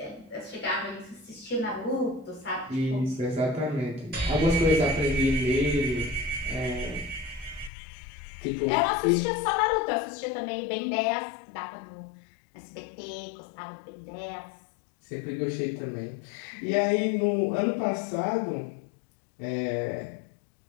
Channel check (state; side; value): drops out; right; at 7.7 s